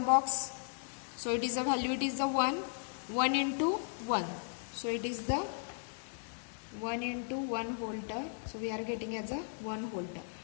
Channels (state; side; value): silent; right; digital silence